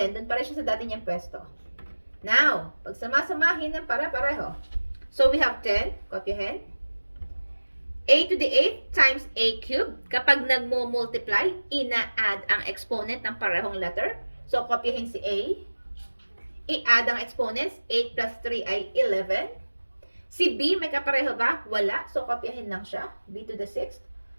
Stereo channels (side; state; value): both; inverted; correlation -1.00